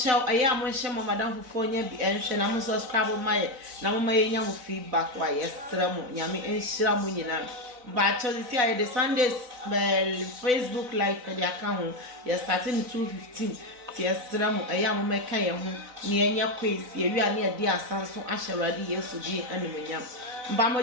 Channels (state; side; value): late; left; 4.0 ms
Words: aya mo hye mo madam fofo nya bi enhwe na mo subscribe ma ye na mo ma ye nya mo feedback wa yesra mo. Nyame enhyira mu nyina. But see I the Sundays Facebook live for the account. You're starting 2:15. Yesra mo aya mo meka ye ho ne anya quiz ye wi ane ade asanso ahyewrade Yesu di animonyam mba mo